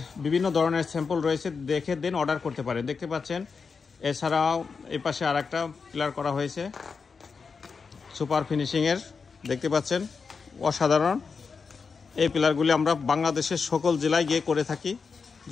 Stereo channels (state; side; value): quieter; right; 5.2 dB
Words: বিভিন্ন ধরনের স্যাম্পল রয়েছে, দেখে দেন অর্ডার করতে পারেন। দেখতে পাচ্ছেন এছাড়াও এই পাশে আর একটা পিলার করা হয়েছে সুপার ফিনিশিংয়ের। দেখতে পাচ্ছেন অসাধারণ। এই পিলারগুলি আমরা বাংলাদেশের সকল জেলায় গিয়ে করে থাকি।